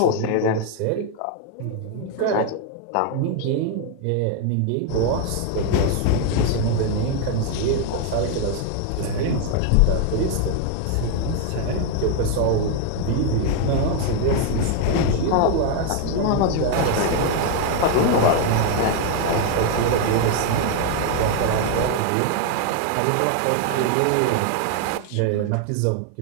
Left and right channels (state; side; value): different; both; correlation 0.00